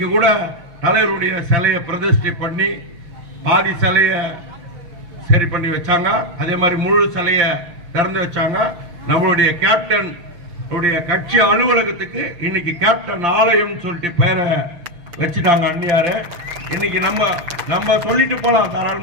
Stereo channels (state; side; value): late; left; 5.9 ms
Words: கூட தலைவருடைய சிலையை பிரதிஷ்டை பண்ணி பாதி சிலையை சரி பண்ணி வச்சாங்க, அதே மாதிரி முழு சிலையை திறந்து வச்சாங்க. நம்மளுடைய கேப்டன் கட்சி அலுவலகத்துக்கு இன்னைக்கு கேப்டன் ஆலயம் சொல்லிட்டு பேரை வச்சுட்டாங்க அந்நியாரு. இன்னைக்கு நம்ம சொல்லிட்டு போலாம்,